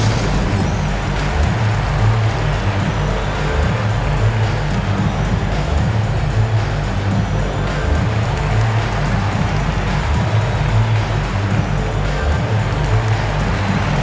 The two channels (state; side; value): identical; both; correlation 1.00